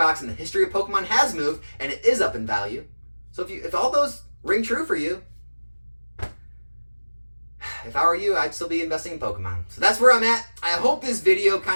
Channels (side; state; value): both; inverted; correlation -1.00